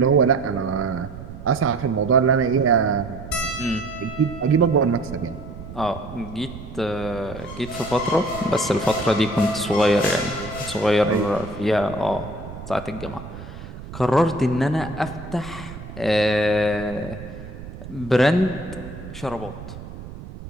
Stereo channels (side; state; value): right; noise; rumble, 13 dB below the sound